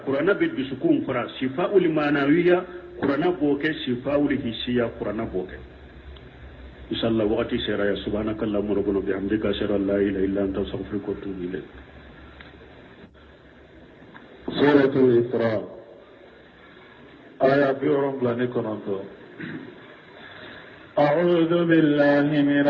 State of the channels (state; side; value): identical; both; correlation 1.00